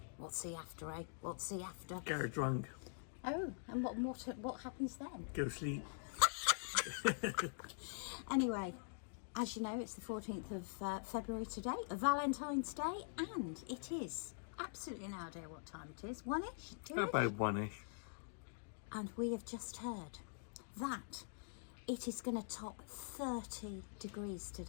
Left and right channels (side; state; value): right; silent; digital silence